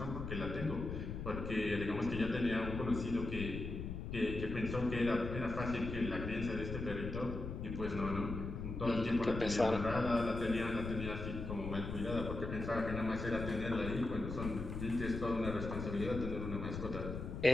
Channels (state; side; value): noise; left; rumble, 5 dB below the sound